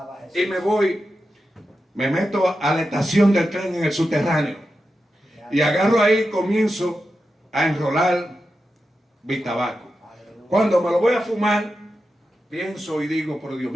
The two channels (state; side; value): normal; both; correlation 0.90